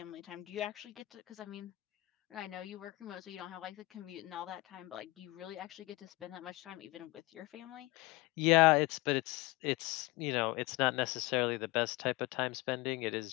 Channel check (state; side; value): quieter; right; 21.0 dB